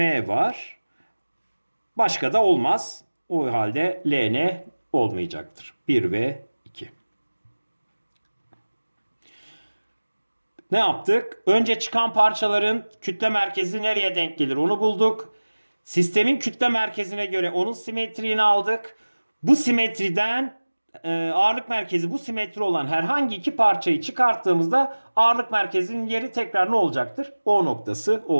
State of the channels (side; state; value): both; inverted; correlation -1.00